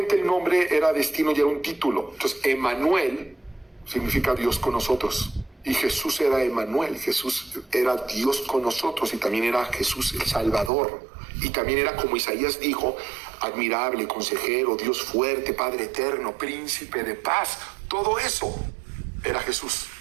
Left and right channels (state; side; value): drops out; left; at 10.7 s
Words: el nombre era destino y era un título. Entonces, Emmanuel significa Dios con nosotros. Y Jesús era Emmanuel. Jesús era Dios con nosotros y también era Jesús el Salvador. Y también era, como Isaías dijo, admirable, consejero, Dios fuerte, Padre eterno, príncipe de paz. Todo eso era Jesús.